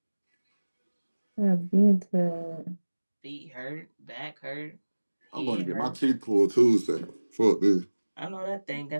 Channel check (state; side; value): inverted; both; correlation -1.00